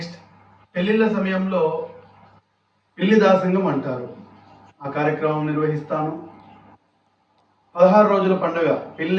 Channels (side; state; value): both; identical; correlation 1.00